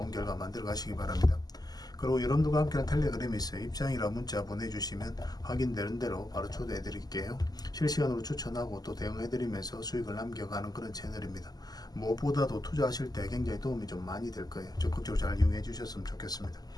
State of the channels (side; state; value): right; late; 0.19 ms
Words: 결과 만들어 가시기 바랍니다. 그리고 여러분들과 함께하는 텔레그램이 있어요. 입장이라 문자 보내주시면 확인되는 대로 바로 초대해 드릴게요. 실시간으로 추천하고 또 대응해 드리면서 수익을 남겨가는 그런 채널입니다. 무엇보다도 투자하실 때 굉장히 도움이 좀 많이 될 거예요. 적극적으로 잘 이용해 주셨으면 좋겠습니다.